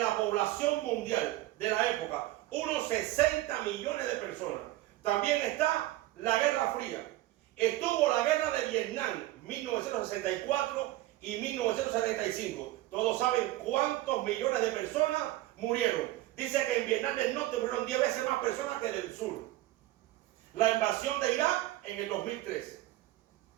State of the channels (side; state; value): left; quieter; 16.4 dB